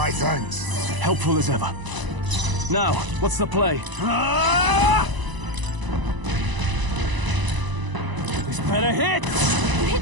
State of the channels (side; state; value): left; late; 1.0 ms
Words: thanks. Helpful as ever. Now, what's the play? Ah! This better hit! You